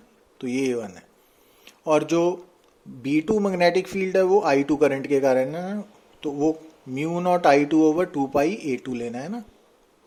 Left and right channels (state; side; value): identical; both; correlation 1.00